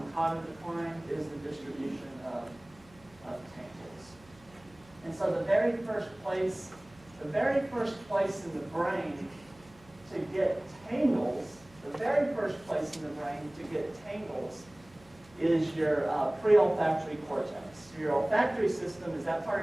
cognitive decline is the distribution of tangles. And so the very first place in the brain to get tangles, is your pre-olfactory cortex. Your olfactory system is that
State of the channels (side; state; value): right; noise; hum, 26 dB below the sound